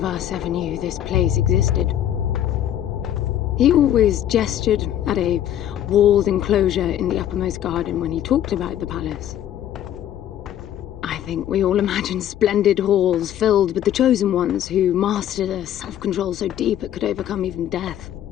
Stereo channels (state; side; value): quieter; right; 11.1 dB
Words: us ever knew this place existed. He always gestured at a walled enclosure in the uppermost garden when he talked about the palace. I think we all imagined splendid halls filled with the chosen ones who mastered a self-control so deep it could overcome even death.